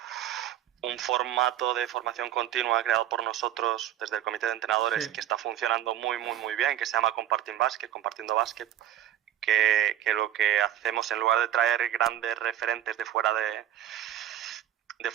formato de formación continua creado por nosotros desde el comité de entrenadores, que está funcionando muy bien, que se llama Compartiendo Básquet, que lo que hacemos, en lugar de traer grandes referentes de fuera de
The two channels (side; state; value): left; quieter; 11.7 dB